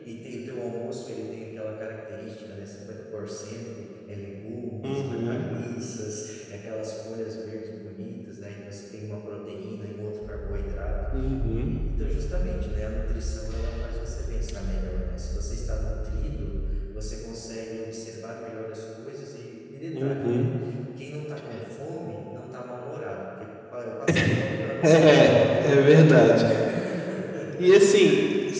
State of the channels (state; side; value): identical; both; correlation 1.00